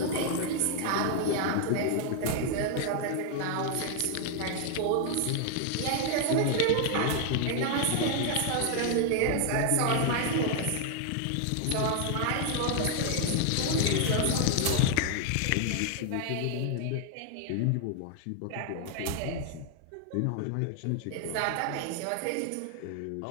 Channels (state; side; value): different; both; correlation 0.00